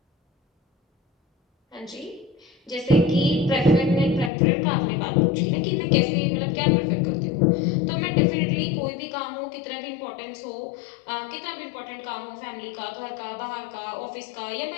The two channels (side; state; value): right; drops out; at 4.3 s